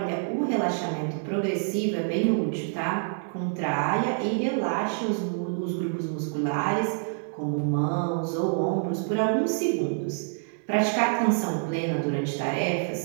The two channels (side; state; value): left; silent; digital silence